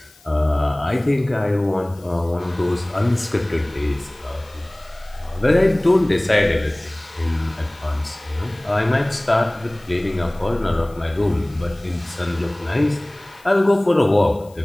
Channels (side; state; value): left; noise; hiss, 28 dB below the sound